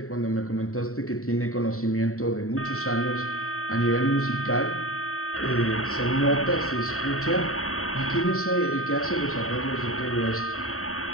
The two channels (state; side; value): late; right; 0.64 ms